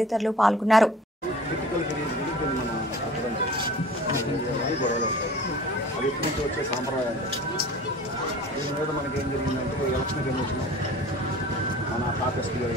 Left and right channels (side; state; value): both; normal; correlation 0.44